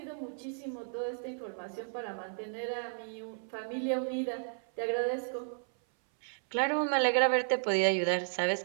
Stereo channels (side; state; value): left; silent; 56 dB below the other